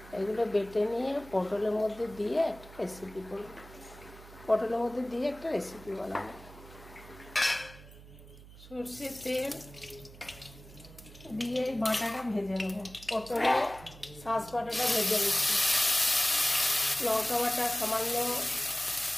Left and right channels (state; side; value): noise; right; hum, 19 dB below the sound